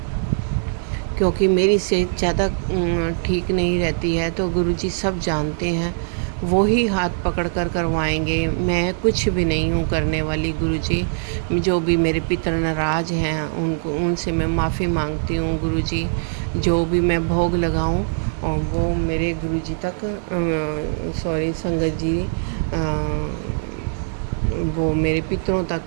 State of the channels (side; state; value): left; silent; digital silence